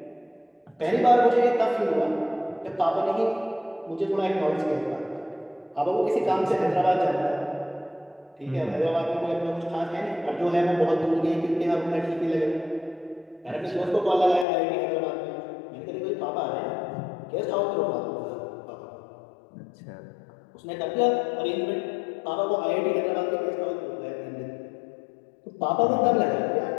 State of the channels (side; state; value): right; drops out; at 14.5 s